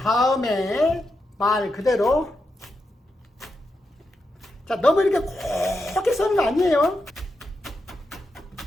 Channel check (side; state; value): both; normal; correlation 0.86